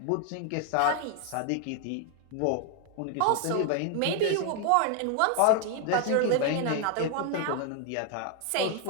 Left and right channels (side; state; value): both; different; correlation 0.00